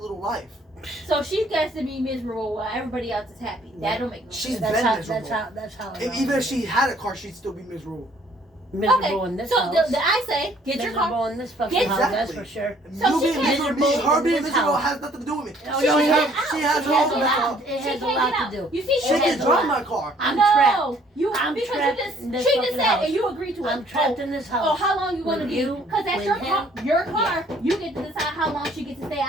life. So she gets to be miserable while everybody else is happy. That don't make no She's sense. That's been how. miserable. That's how. If, even if she had a car, she'd still be miserable. miserable in this so house. I say, get your miserable car. in this fucking Get- house. That's Exactly. for sure. So You she being can't- miserable, miserable her in being this miserable house. has nothing to do with me. No, She no, can't it get has, out. She She has it her has own a car. lot. It She has a can't lot get out. to do. You see, She It can has a drive lot. my car. I'm no, trapped. you I'm because trapped you just in this she just fucking said house. and you agreed to it. I'm trapped in this house. Oh, how long you want to With be? you, Because that's with your him. car. Your car. You get to decide how long she gets to stay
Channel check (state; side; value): normal; both; correlation 0.60